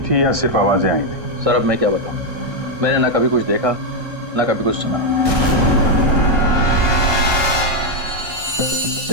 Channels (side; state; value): left; late; 1.6 ms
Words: या सिर्फ आवाजें आई थी? सर अब मैं क्या बताऊं, मैंने ना कभी कुछ देखा ना कभी कुछ सुना।